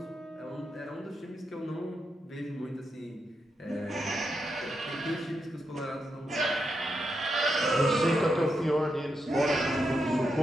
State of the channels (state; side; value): normal; both; correlation 0.84